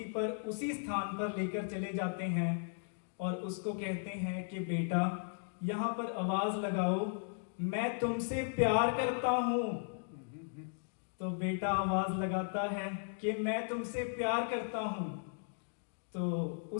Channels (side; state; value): right; silent; digital silence